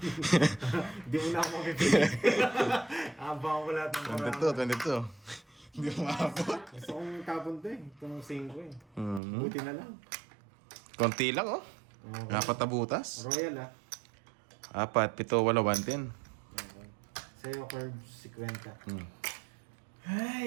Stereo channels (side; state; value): left; drops out; at 9.2 s